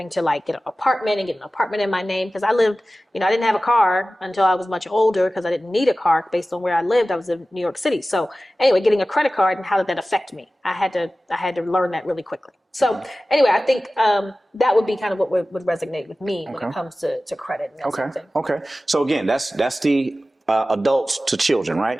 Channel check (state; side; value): normal; both; correlation 0.96